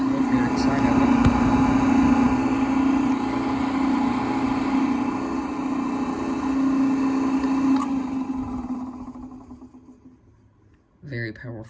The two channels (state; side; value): identical; both; correlation 1.00